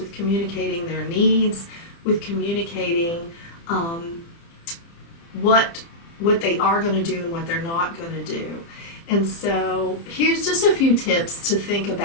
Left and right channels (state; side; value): late; right; 30 ms